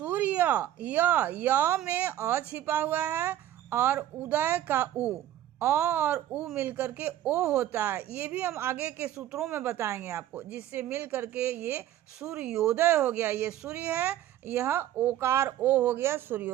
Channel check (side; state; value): left; quieter; 12.6 dB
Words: य में अ छिपा हुआ है और उदय का उ, अ और उ मिलकर के ओ होता है। ये भी हम आगे के सूत्रों में बताएंगे आपको, जिससे मिल करके ये सूर्योदय हो गया। ये सूर्य है, यह ओकार ओ हो गया,